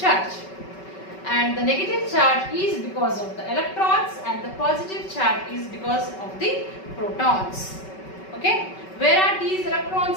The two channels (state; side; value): late; right; 5.3 ms